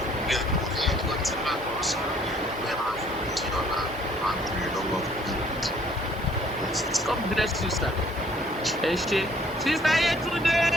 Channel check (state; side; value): normal; both; correlation 0.60